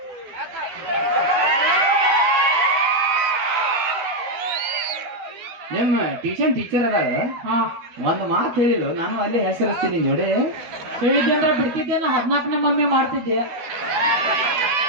ನಿಮ್ಮ ಟ್ಯೂಷನ್ ಟೀಚರ್ ಅದಾಗ ಒಂದು ಮಾತು ಹೇಳಿಲ್ಲ ನಾನು ಅಲ್ಲೇ ಹೆಸರಿಸ್ತೀನಿ ನೋಡಿ ಹೇಳಿದ್ದೆ ಬಿಡ್ತಿದ್ದೇನ 14ನೇ ಮಮ್ಮಿ ಮಾಡ್ತಿದ್ದೆ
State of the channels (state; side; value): late; left; 12 ms